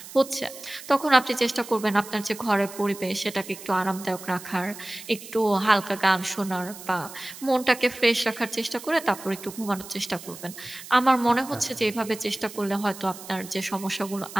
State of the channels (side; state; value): right; noise; hiss, 15 dB below the sound